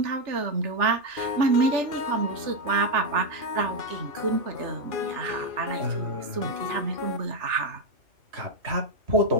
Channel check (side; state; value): left; late; 3.3 ms